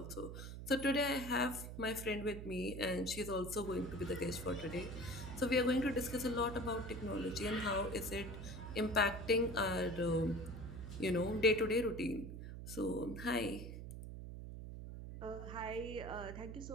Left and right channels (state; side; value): noise; right; hum, 9 dB below the sound